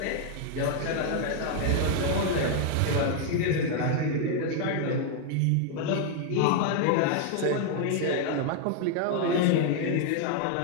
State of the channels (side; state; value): both; different; correlation 0.00